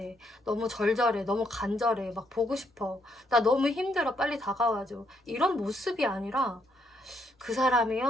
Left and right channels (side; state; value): both; normal; correlation 0.74